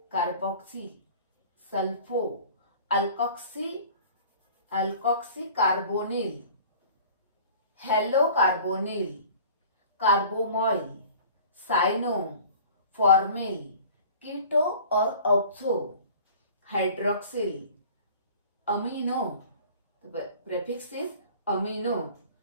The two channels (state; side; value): inverted; both; correlation -0.45